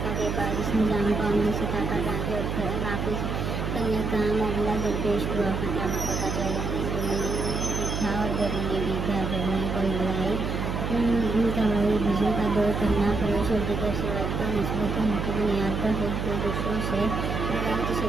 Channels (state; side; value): noise; right; hum, 2 dB below the sound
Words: के बाद इस निज़ाम को अमली सतह पर लाने और नाफिज़ करने का मामला दरपेश हुआ। फ़िज़ा मक्का का चैलेंज था और गर्मी भी था। गर्मी को लड़ाई कवाई वज़ू का दौर करना, फरोश और दीगर शराइत पर निस्बत की बुनियाद पर खुद को दूसरों से